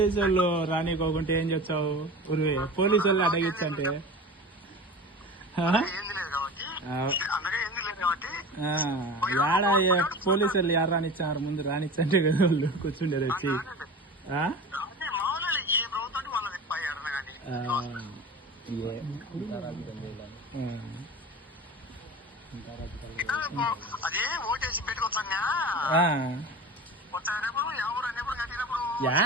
వాళ్ళు రానికోకుంటే ఏం చెప్తావు? ఉరివే పోలీసు వాళ్ళు అడగిచ్చంటే యాడ పోలీసు వాళ్ళు యారు రానిచ్చారు? ముందు రానిచ్చంటే కదా వాళ్ళు కూర్చుండేది వచ్చి.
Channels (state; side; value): normal; both; correlation 0.33